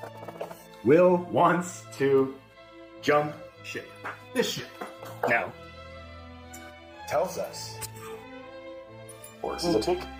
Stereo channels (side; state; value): both; identical; correlation 1.00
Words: Will wants to jump ship. This ship. Now, tells us, or this is a big